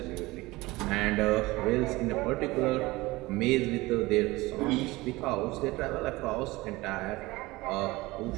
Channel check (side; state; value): left; quieter; 20.8 dB